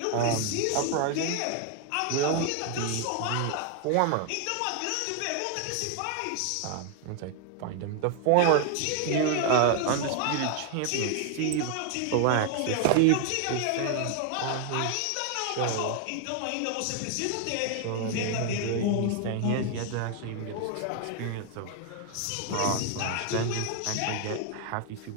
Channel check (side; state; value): both; different; correlation 0.00